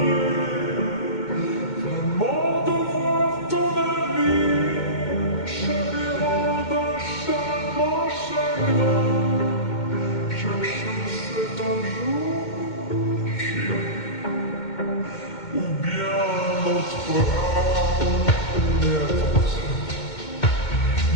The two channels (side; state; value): right; late; 2.2 ms